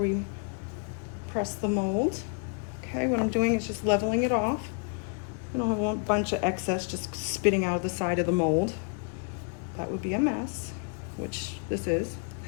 press the mold. Okay, what I'm doing is just leveling it off. I don't have a bunch of excess just spitting out of the side of the mold. That would be a mess, which this is.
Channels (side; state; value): right; quieter; 39.8 dB